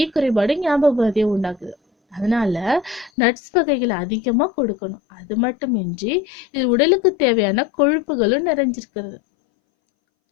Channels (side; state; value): right; drops out; at 3.1 s